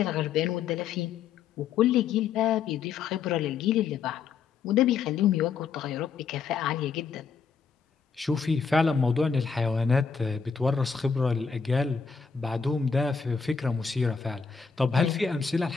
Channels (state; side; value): quieter; right; 5.9 dB